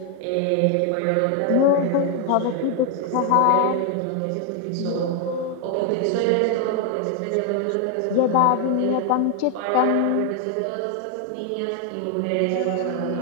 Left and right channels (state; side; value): different; both; correlation 0.01